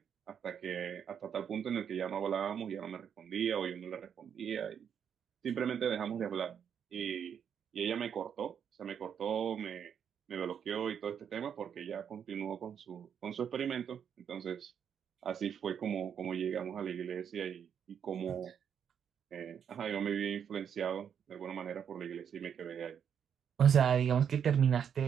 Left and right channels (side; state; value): left; quieter; 8.0 dB